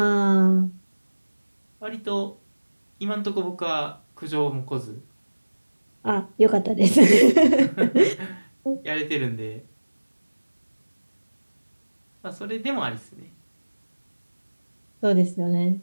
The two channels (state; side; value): inverted; both; correlation -1.00